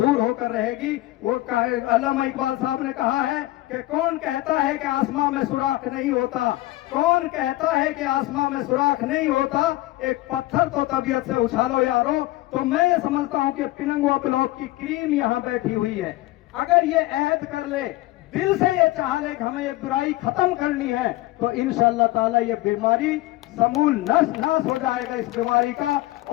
होकर रहेगी। वो अल्लामा इकबाल साहब ने कहा है कि कौन कहता है कि आसमां में सुराख नहीं होता, कौन कहता है कि आसमां में सुराख नहीं होता, एक पत्थर तो तबीयत से उछालो यारो। तो मैं ये समझता हूं कि पिनंगुआ ब्लॉक की क्रीम यहाँ बैठी हुई है, अगर ये अहद कर ले, दिल से ये चाह ले कि हमें ये बुराई खत्म करनी है, तो इंशाअल्लाह ताला ये बीमारी समूल नाश हो जाएगा इस बीमारी का।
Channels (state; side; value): quieter; right; 17.9 dB